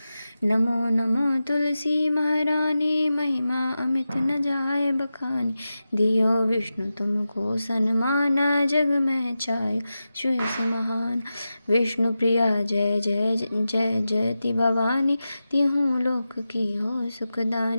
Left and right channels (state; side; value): inverted; both; correlation -0.92